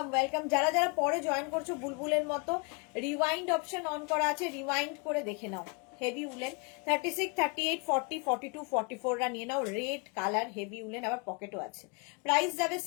ওয়েলকাম। যারা যারা পরে জয়েন করছো বুলবুলের মতো, রিওয়াইন্ড অপশন অন করা আছে, রিওয়াইন্ড করে দেখে নাও। হেভি উলেন 36, 38, 40, 42, 44 রা নিয়ে নাও। রেড কালার হেভি উলেন, আবার পকেটও আছে। প্রাইস যাবে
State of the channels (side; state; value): right; quieter; 32.4 dB